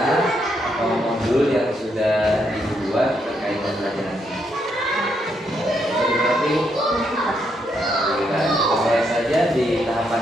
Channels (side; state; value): both; normal; correlation 0.77